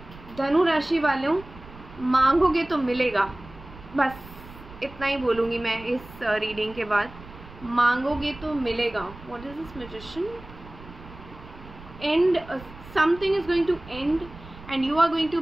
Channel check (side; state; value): right; noise; rumble, 18 dB below the sound